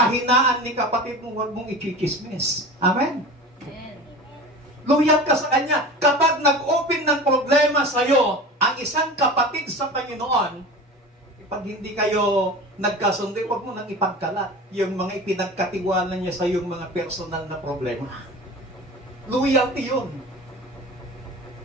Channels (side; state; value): both; normal; correlation 0.34